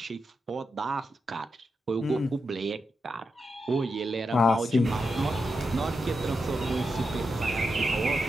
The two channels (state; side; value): normal; both; correlation 0.87